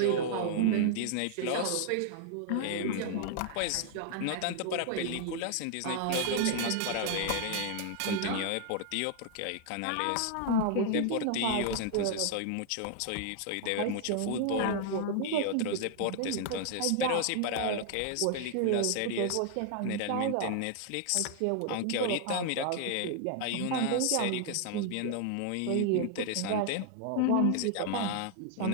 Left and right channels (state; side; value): different; both; correlation 0.00